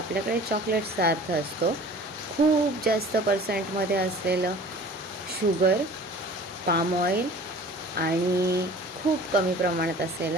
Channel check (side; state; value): both; normal; correlation 0.45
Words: चॉकलेट्सचा अर्थ असतो खूप जास्त पर्सेंटमध्ये असलेलं शुगर, पाम ऑइल आणि खूप कमी प्रमाणात